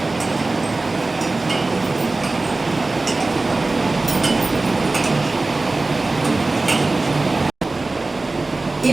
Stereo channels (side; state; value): left; quieter; 3.2 dB